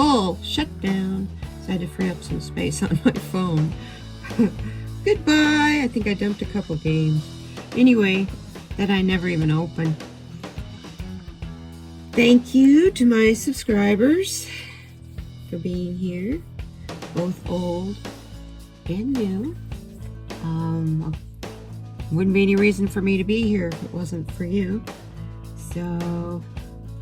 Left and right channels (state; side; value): identical; both; correlation 1.00